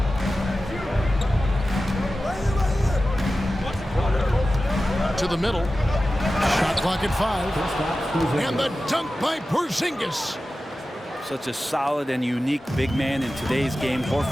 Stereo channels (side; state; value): both; normal; correlation 0.94